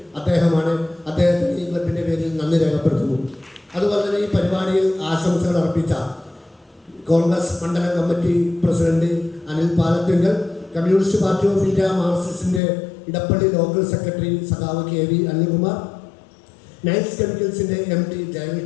അദ്ദേഹമാണ്. അദ്ദേഹത്തിന് ഈ ക്ലബിൻ്റെ പേരിൽ നന്ദി രേഖപ്പെടുത്തുന്നു. അതുപോലെ തന്നെ ഈ പരിപാടിയിൽ ആശംസകൾ അർപ്പിച്ച കോൺഗ്രസ് മണ്ഡലം committee president Anil Palathinkal, Communist Party of India മാർക്സിസ്റ്റിൻ്റെ ഇടപ്പള്ളി ലോക്കൽ സെക്രട്ടറി സഖാവ് KV അനിൽകുമാർ, നൈറ്റ്സ് കെമിക്കൽസിൻ്റെ MD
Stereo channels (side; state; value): right; drops out; at 12.6 s